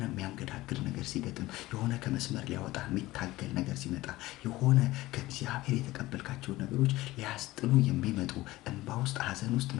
የሚያንገዳግድ ነገር ሲገጥም፣ የሆነ ከመስመር ሊያወጣ የሚታገል ነገር ሲመጣ፣ የሆነ ከእግዚአብሔር የተቀበልካቸው ነገሮች ሊያስጥሉ የሚመጡ፣ እንባ ውስጥ፣ ሐዘን ውስጥ፣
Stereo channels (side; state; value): right; quieter; 18.1 dB